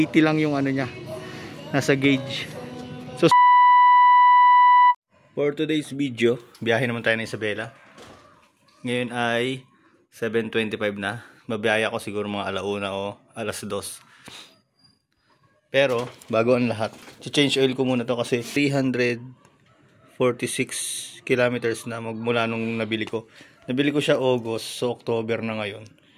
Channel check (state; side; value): identical; both; correlation 1.00